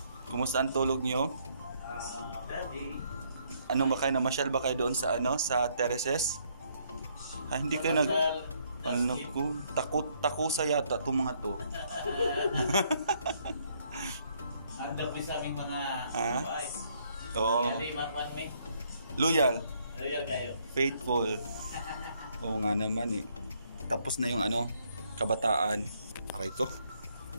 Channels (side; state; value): both; inverted; correlation -0.70